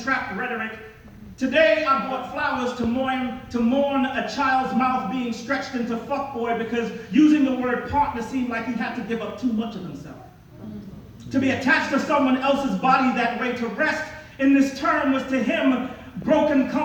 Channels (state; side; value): identical; both; correlation 1.00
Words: rhetoric? Today I bought flowers to mourn a child's mouth being stretched into fuckboy because using the word partner seemed like he had to give up too much of himself. To be attached to someone else's body that way, to rest in this term, was to him broken